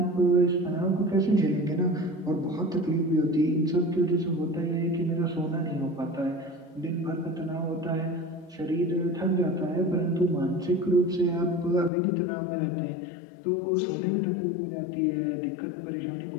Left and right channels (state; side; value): drops out; right; at 11.9 s